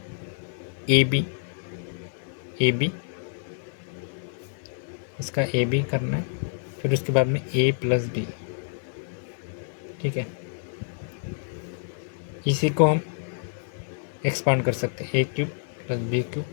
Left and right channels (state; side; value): silent; right; digital silence